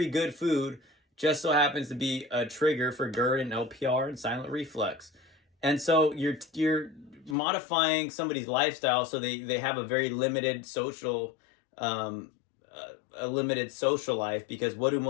good food just so happens to be a trigger for GERD and LPR and silent reflux. And so you're modifying somebody's lifestyle so they have a very limited social a limited social life, because what do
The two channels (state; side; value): drops out; right; at 7.4 s